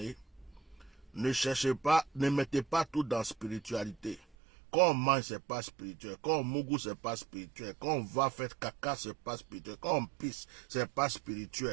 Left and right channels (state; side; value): drops out; left; at 4.4 s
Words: Ne cherchez pas, ne mettez pas tout dans la spiritualité. Quand on mange, c'est pas spirituel. Quand on mougou, c'est pas spirituel. Quand on va faire caca, c'est pas spirituel. Quand on pisse, c'est pas